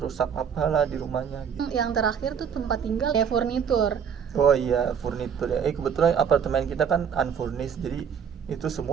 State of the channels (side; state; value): left; quieter; 7.4 dB